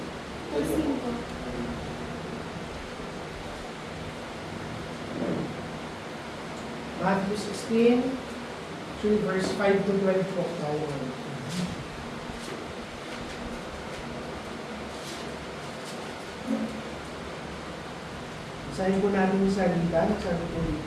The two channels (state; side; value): identical; both; correlation 1.00